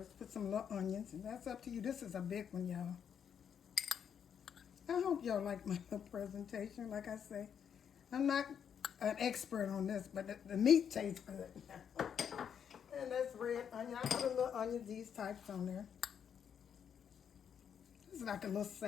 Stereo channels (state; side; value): quieter; right; 8.0 dB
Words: Put some little onions, and that's up to you. This is a big one, y'all. I hope y'all like my presentation. Like I say, I'm not an expert on this, but the meat tastes good. And that's red onion. I put a little onion, these types on there. This is like a little